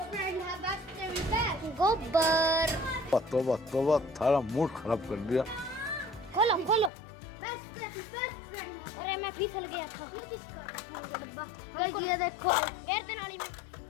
फ्रेंड है, बेस्ट गोबर। तोबा थारा मूड खराब कर दिया। खोलो खोलो। Best friend. अरे मैं फिसल गया था। गाइस ये देखो, गिर दे नाली में।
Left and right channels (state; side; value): drops out; right; at 6.9 s